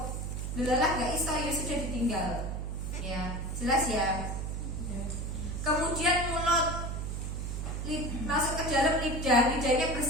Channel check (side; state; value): right; noise; hum, 3 dB below the sound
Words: Delalah gak iso ya sudah ditinggal ya. Jelas ya. Kemudian mulut, masuk ke dalam lidah. Lidahnya